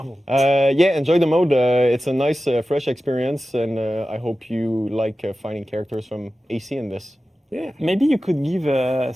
Yeah, enjoy the mode. It's a nice, fresh experience, and I hope you like finding characters from AC in this. Yeah. Maybe you could give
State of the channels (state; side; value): normal; both; correlation 0.94